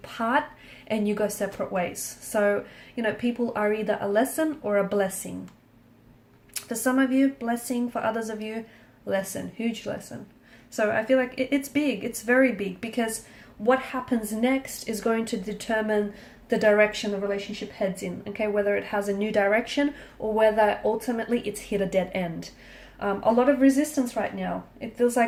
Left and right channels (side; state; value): both; identical; correlation 1.00